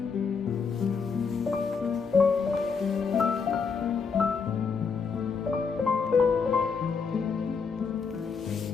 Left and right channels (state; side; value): quieter; right; 5.5 dB